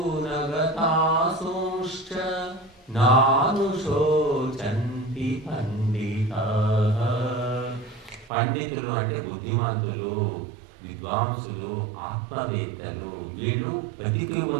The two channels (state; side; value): drops out; left; at 8.3 s